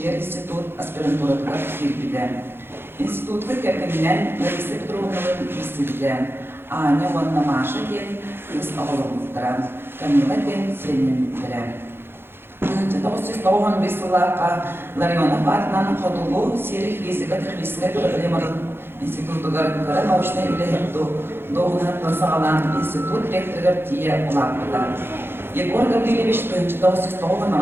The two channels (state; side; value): late; left; 0.11 ms